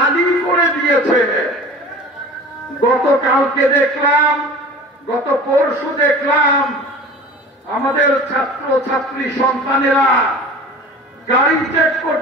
করে দিয়েছে। গতকালকে দেখলাম, গত পরশু দেখলাম আমাদের ছাত্র ছাত্রী সন্তানেরা গাড়ি চেক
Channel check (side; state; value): both; normal; correlation 0.39